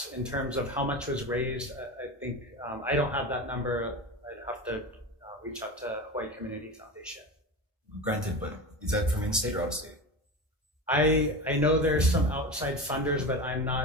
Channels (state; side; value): normal; both; correlation 0.26